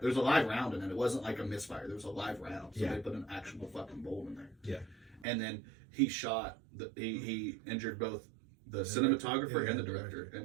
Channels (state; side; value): drops out; left; at 5.2 s